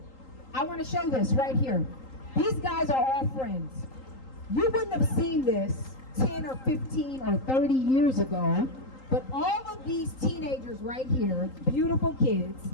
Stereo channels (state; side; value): late; right; 3.8 ms